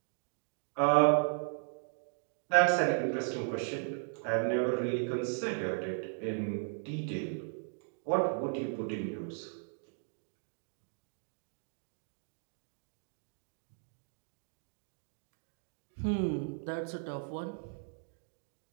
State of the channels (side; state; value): left; silent; digital silence